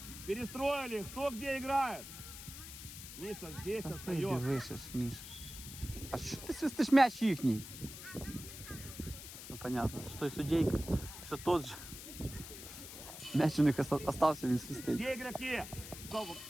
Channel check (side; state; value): left; noise; hiss, 12 dB below the sound